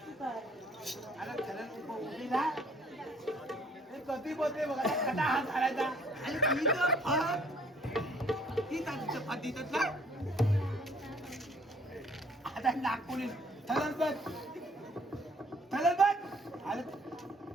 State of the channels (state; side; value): normal; both; correlation 0.60